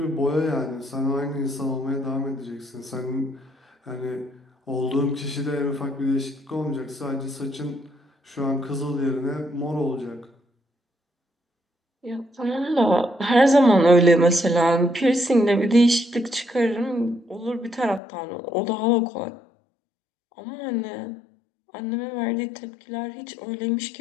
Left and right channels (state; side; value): drops out; right; at 18.0 s